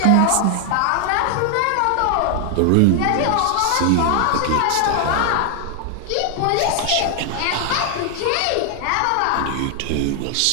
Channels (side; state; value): both; different; correlation 0.00